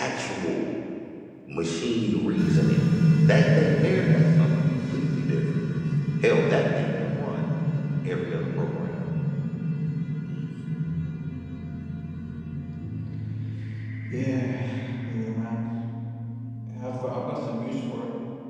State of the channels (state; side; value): identical; both; correlation 1.00